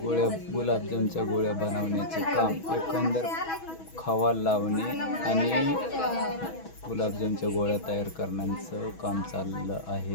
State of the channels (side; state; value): right; late; 6.2 ms